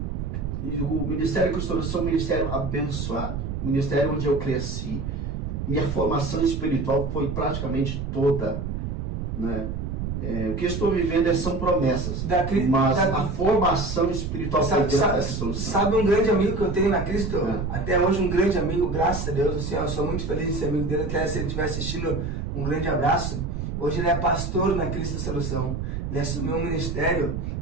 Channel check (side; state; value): right; noise; rumble, 4 dB below the sound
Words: E o Ministério Cristo Solução é um ministério abençoado. Ministério onde eu cresci. Minha formação espiritual foi praticamente toda, né? O que eu estou vivendo são promessas, mas a formação espiritual foi dentro dessa solução. Sabe um grande amigo que eu tenho na Cristo? Até hoje um grande amigo, graças a Deus, assim, eu sou muito feliz em ser amigo dele, até se ele estiver assistindo, um grande abraço. Hoje ele é pastor na Cristo Solução. Ele assumiu um ministério,